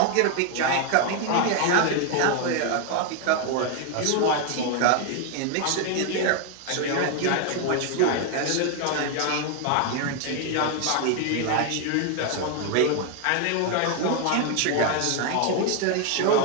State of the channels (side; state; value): both; different; correlation 0.01